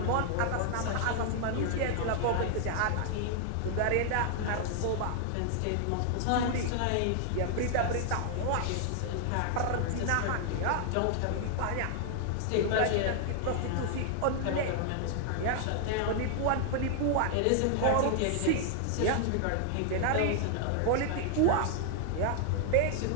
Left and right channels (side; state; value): both; different; correlation 0.00